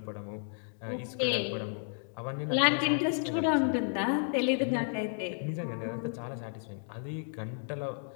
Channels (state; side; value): silent; right; 56 dB below the other